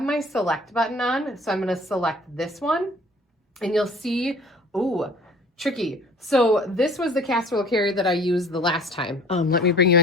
my select button on. So I'm gonna select this one and you'll see, ooh, tricky. So this was the casserole carrier that I used the last time. Let me bring you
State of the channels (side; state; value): both; normal; correlation 0.50